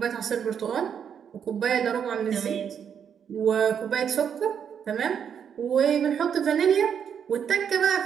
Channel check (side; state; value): left; quieter; 7.9 dB